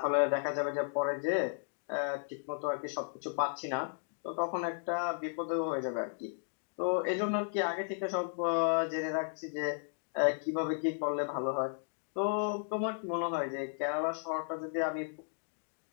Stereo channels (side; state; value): right; silent; digital silence